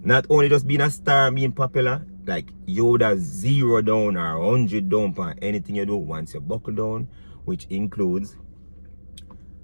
Not only just being a star and being popular, like you would have 0 down or 100 down on anything you do once you buckle down, which includes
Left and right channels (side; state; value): both; inverted; correlation -1.00